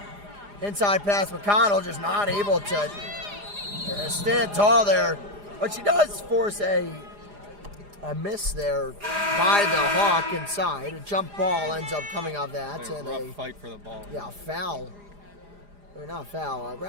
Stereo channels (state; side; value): late; left; 4.9 ms